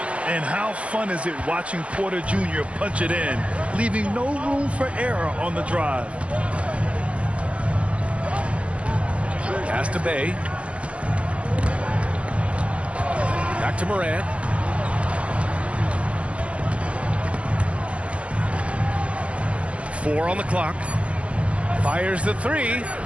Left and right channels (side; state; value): left; late; 0.062 ms